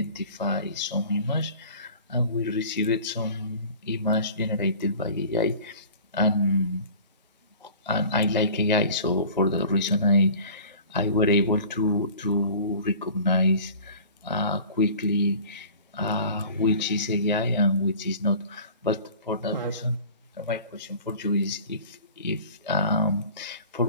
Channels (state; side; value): inverted; both; correlation -0.43